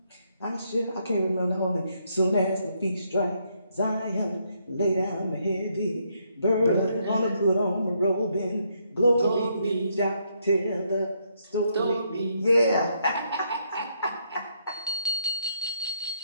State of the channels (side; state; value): both; inverted; correlation -0.74